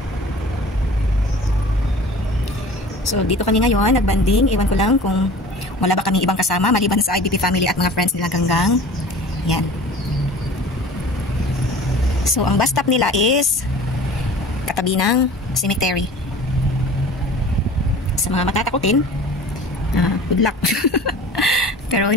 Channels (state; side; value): normal; both; correlation 0.42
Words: So, dito kami ngayon, nagbanding. Iwan ko lang kung wala ba kaming ibang kasama, maliban sa IBP family at mga friends nila Ganggang. Yan. So, ang bus stop nila is katabi ng cemetery. Sa mga matatakutin, good luck. Pero